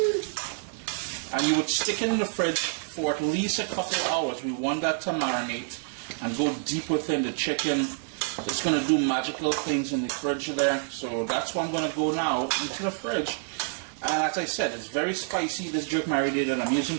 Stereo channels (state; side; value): silent; left; 60 dB below the other